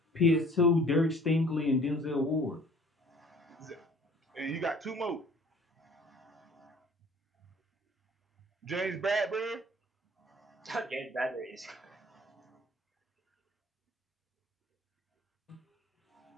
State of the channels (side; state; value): both; normal; correlation 0.52